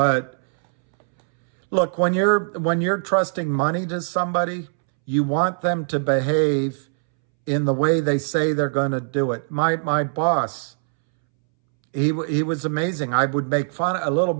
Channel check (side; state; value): left; silent; 64 dB below the other